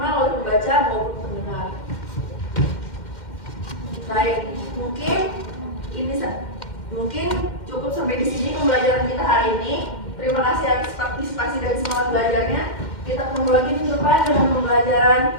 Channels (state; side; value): late; right; 2.1 ms